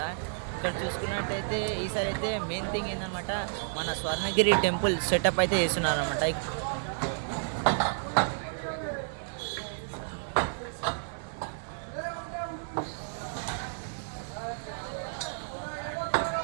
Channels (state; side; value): silent; left; digital silence